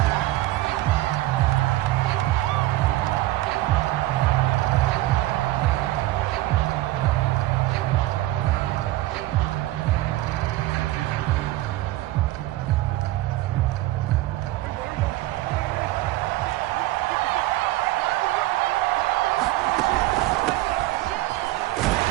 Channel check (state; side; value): quieter; left; 16.9 dB